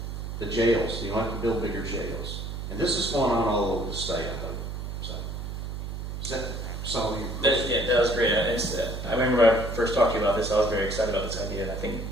The jails, you don't have to build bigger jails. And this is going on all over the state, I hope. So Does that solve your That, question? yeah, that was great. I remember when I first talked to you about this, I was very excited about this idea, and I think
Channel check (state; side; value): noise; right; hum, 6 dB below the sound